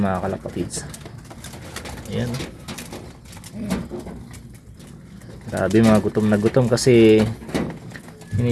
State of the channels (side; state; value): both; identical; correlation 1.00